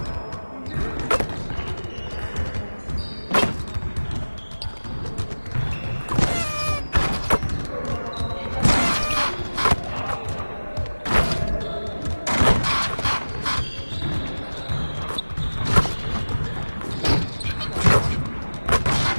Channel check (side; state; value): both; inverted; correlation -1.00